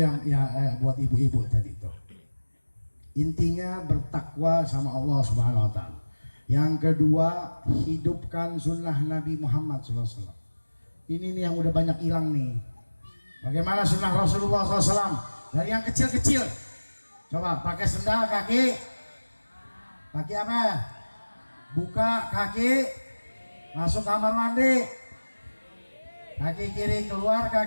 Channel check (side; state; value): both; inverted; correlation -1.00